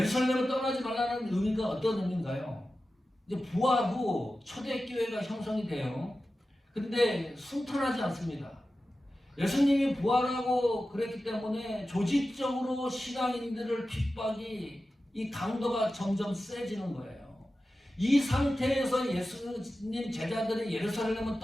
떠나지 말라는 의미가 어떤 의미인가요? 이제 부활 후 초대교회가 형성이 돼요. 근데 순탄하지 않습니다. 예수님이 부활하고 그랬기 때문에 조직적으로 신앙인들을 핍박이 이 강도가 점점 세지는 거예요. 이 상태에서 예수님 제자들이 예루살렘을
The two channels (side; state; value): both; normal; correlation 0.94